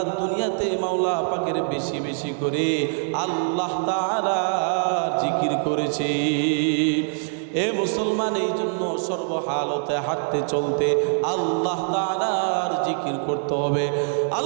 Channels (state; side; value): silent; left; digital silence